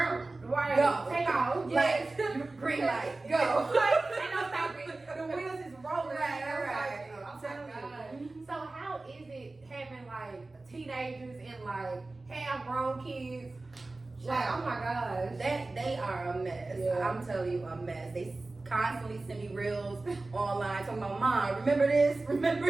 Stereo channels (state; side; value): quieter; left; 3.2 dB